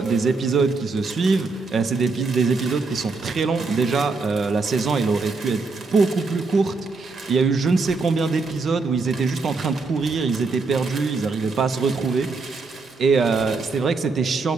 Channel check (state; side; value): quieter; left; 4.0 dB